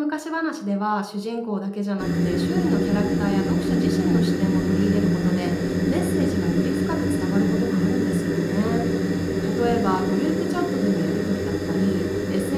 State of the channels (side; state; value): both; identical; correlation 1.00